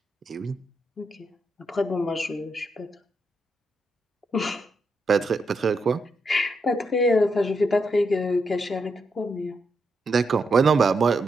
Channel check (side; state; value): both; normal; correlation 0.82